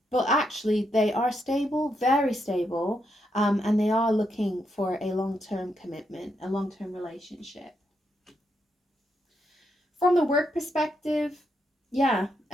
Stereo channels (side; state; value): both; normal; correlation 0.80